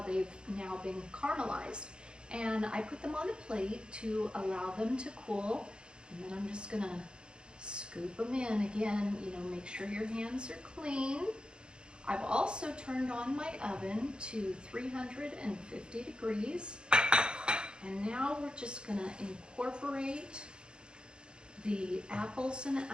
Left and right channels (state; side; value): late; left; 0.051 ms